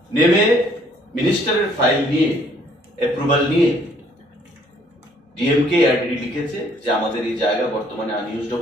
নেমে মিনিস্টারের ফাইল নিয়ে অ্যাপ্রুভাল নিয়ে ডিএমকে এআরডিডি লিখেছে যে আমাদের এই জায়গা বর্তমানে আনইউজড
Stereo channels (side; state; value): both; normal; correlation 0.63